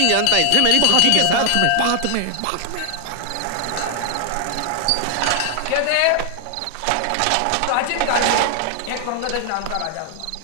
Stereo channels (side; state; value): both; different; correlation 0.00